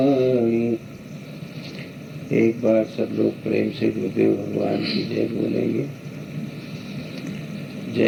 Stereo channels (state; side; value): identical; both; correlation 1.00